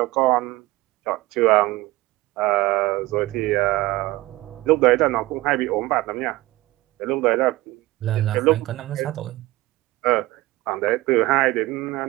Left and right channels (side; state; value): left; quieter; 19.0 dB